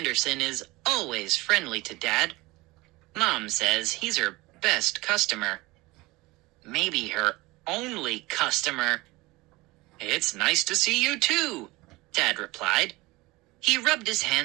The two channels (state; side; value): quieter; left; 21.5 dB